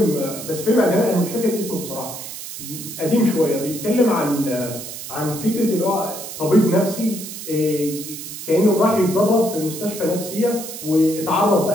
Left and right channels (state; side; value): noise; right; hiss, 10 dB below the sound